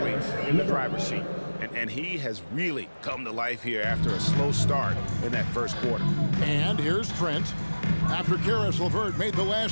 in the driver's seat. And he has really come to life here after a slow start in that first quarter. And here's Trent. After Karis LeVert made the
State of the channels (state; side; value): inverted; both; correlation -1.00